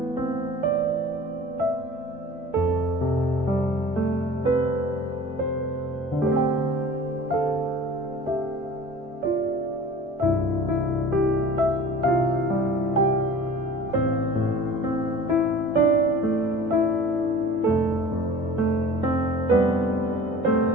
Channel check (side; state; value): both; normal; correlation 0.42